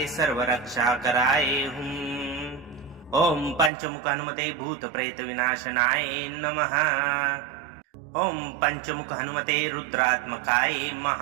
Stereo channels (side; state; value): left; drops out; at 3.7 s